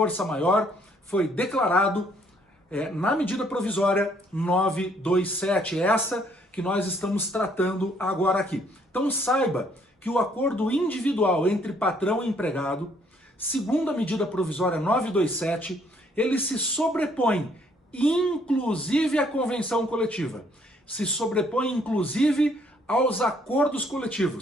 maior foi declarado na medida provisória 927, essa que nós estamos tratando agora aqui. Então saiba que o acordo individual entre patrão e empregado, segundo a medida provisória 927, ele se sobrepõe inclusive à convenção coletiva, se sobrepõe inclusive aos acordos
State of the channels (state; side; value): normal; both; correlation 0.66